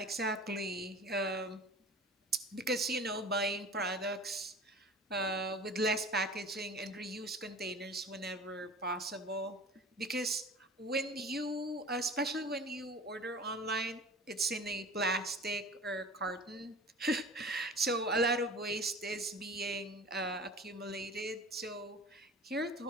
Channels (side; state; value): both; normal; correlation 0.40